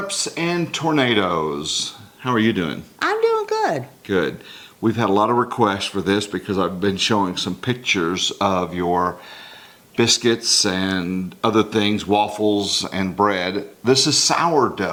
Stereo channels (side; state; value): both; identical; correlation 1.00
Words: and Tornadoes. How are you doing? I'm doing good. Good. We've had a lot of requests for this because I've been showing some pictures of your biscuits and other things, waffles and bread. This is